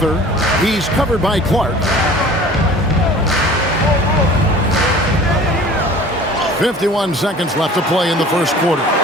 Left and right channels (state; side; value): normal; both; correlation 0.45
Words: He's covered by Clark. 51 seconds left to play in the first quarter.